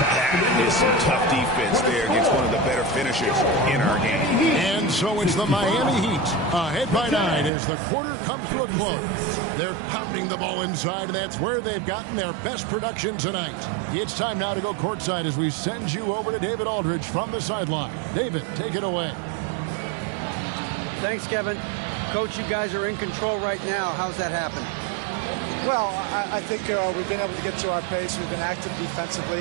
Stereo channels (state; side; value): drops out; left; at 7.5 s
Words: is some tough defense there against one of the better finishers in our game. And so it's the Miami Heat ahead by 9 as the quarter comes to a close. They're pounding the ball inside, and that's where they've gotten their best production tonight. It's time now to go courtside as we send you over to David Aldridge from the sideline. David, take it away. Thanks, Kevin. Coach, you guys are in control right now. How's that happen? Well, I think we've been able to get to our pace. We've been active